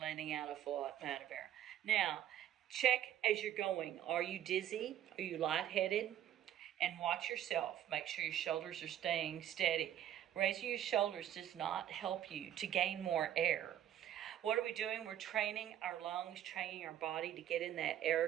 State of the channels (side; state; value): left; quieter; 11.3 dB